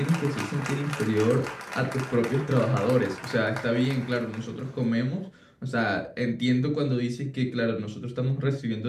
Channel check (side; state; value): both; identical; correlation 1.00